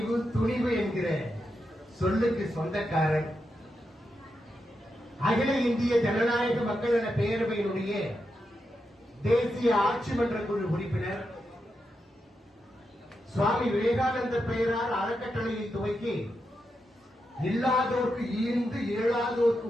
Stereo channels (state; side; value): normal; both; correlation 0.86